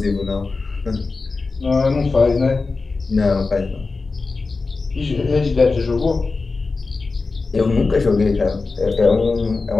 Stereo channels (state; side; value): quieter; right; 4.0 dB